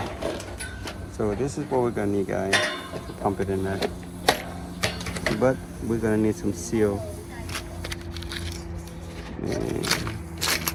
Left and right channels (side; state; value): both; identical; correlation 1.00